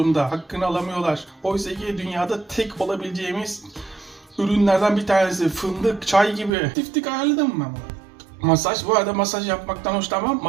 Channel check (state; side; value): drops out; left; at 6.5 s